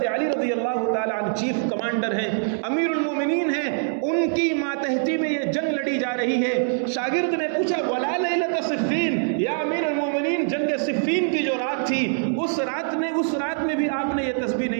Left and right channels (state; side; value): silent; left; digital silence